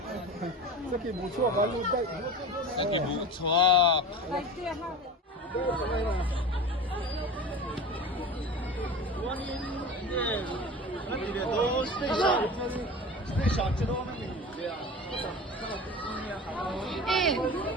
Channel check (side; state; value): both; normal; correlation 0.32